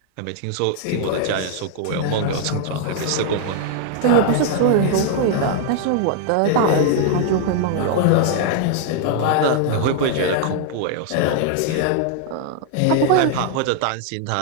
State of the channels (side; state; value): both; different; correlation 0.00